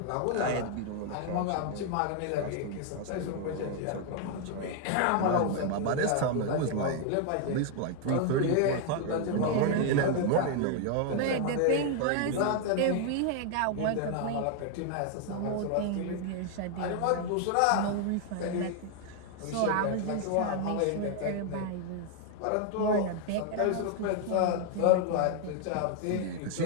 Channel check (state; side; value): different; both; correlation 0.00